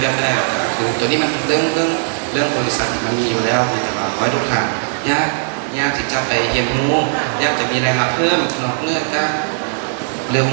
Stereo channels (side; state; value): left; silent; digital silence